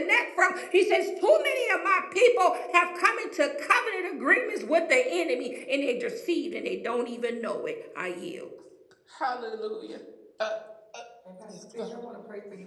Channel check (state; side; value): identical; both; correlation 1.00